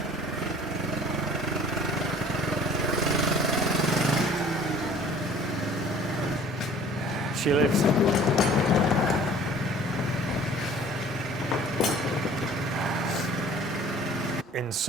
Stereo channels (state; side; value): normal; both; correlation 0.50